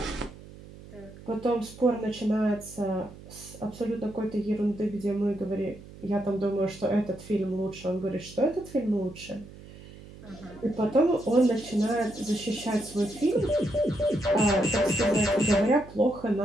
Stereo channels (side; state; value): right; noise; hum, 18 dB below the sound